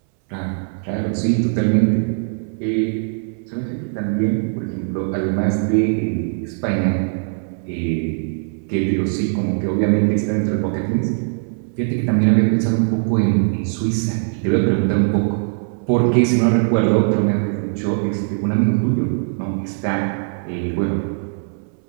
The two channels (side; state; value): left; silent; 66 dB below the other